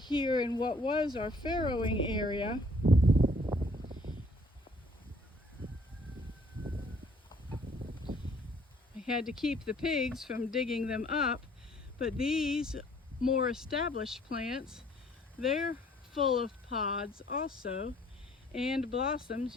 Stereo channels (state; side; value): normal; both; correlation 0.60